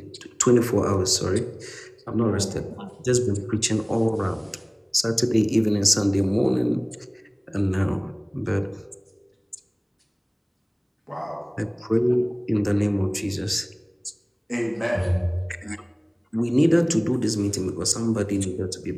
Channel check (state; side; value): identical; both; correlation 1.00